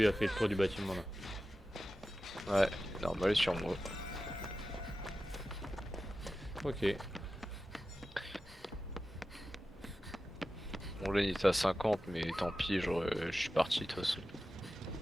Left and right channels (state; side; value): normal; both; correlation 0.93